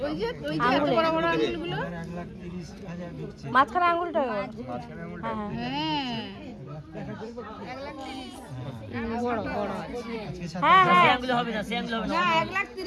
ওই যে এত বড় বড় আঙুলগুলো। মাঝখানে আঙুলটা। হ্যাঁ বড় বড়। হ্যাঁ হ্যাঁ আঙ্গুলে হবে না, সে আঙ্গুলে হবে না। না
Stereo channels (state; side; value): identical; both; correlation 1.00